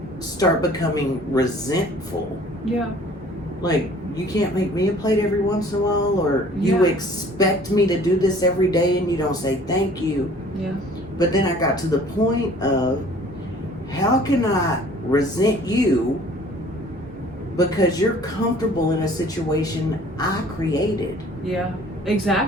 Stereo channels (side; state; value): both; normal; correlation 0.52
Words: start becoming resentful. Yeah. Like, you can't make me a plate every once in a while, or you Yeah. expect me to do this every day and you don't say thank you. Yeah. But then I got to the point of, how can I resent you because you're comfortable in a situation I created? Yeah.